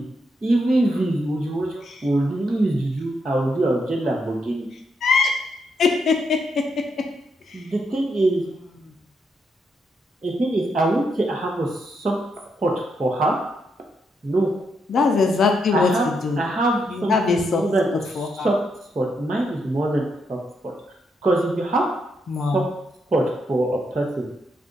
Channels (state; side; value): normal; both; correlation 0.79